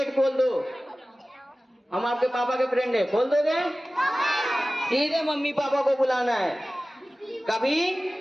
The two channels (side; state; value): both; normal; correlation 0.97